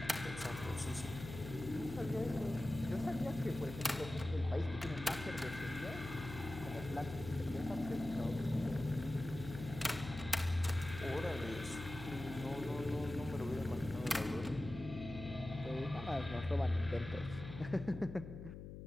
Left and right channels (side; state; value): left; noise; hum, 10 dB below the sound